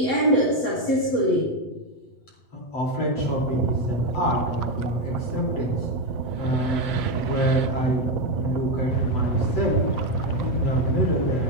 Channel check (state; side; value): late; right; 7.5 ms